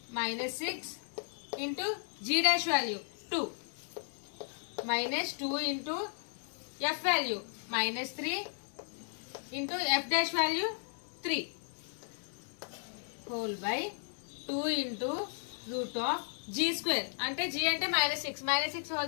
minus 6 into g dash value 2 minus 2 into f value minus 3 into f dash value 3 whole by 2 into root of g square అంటే g అంటే minus 6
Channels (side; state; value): right; silent; 54 dB below the other